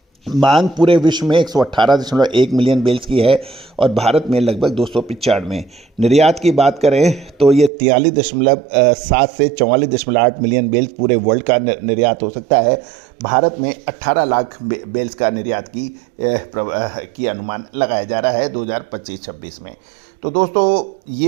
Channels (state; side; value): drops out; left; at 7.7 s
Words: मांग पूरे विश्व में 118.1 मिलियन बेल्स की है और भारत में लगभग 295। निर्यात की बात करें तो ये 43.7 से 44.8 मिलियन बेल्स पूरे वर्ल्ड का निर्यात हो सकता है। भारत में 18 लाख बेल्स का निर्यात की अनुमान लगाया जा रहा है 2025-26 में। तो दोस्तों